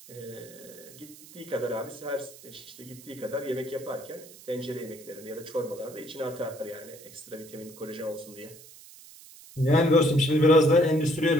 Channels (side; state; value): right; noise; hiss, 20 dB below the sound